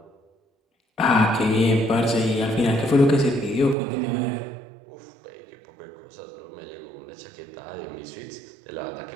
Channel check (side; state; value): left; drops out; at 3.8 s